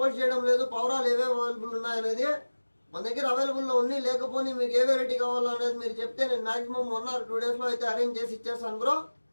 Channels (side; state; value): both; inverted; correlation -1.00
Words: చేయడం లేదు, పవరాలు ఏవే అవైలబుల్ ఉన్నాయనేది. మన దగ్గర అవైలబుల్లో ఉన్నాయి, లేకపోతే మీకు ఏ వెరైటీ కావాలో అనేది మీరు చెప్తే నేను మాక్సిమం 1 or 2 days లో అయితే అరేంజ్ చేసి ఇచ్చేస్తాను బ్రో.